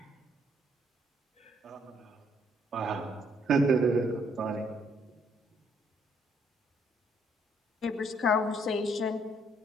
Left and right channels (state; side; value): normal; both; correlation 0.68